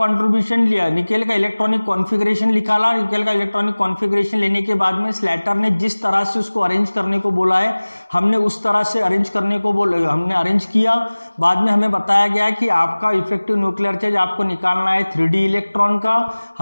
लिया, निकेल का इलेक्ट्रॉनिक कॉन्फ़िगरेशन निकाला। निकेल का इलेक्ट्रॉनिक कॉन्फ़िगरेशन लेने के बाद में स्लेटर ने जिस तरह से उसको अरेंज करने को बोला है, हमने उस तरह से अरेंज करने को बोला, हमने अरेंज किया। बाद में हमें बताया गया कि आपका इफेक्टिव न्यूक्लियर चार्ज आपको निकालना है 3D इलेक्ट्रॉन का।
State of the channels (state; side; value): inverted; both; correlation -1.00